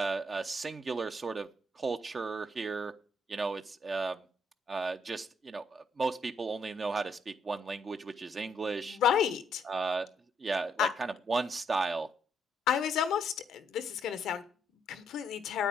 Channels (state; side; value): normal; both; correlation 0.73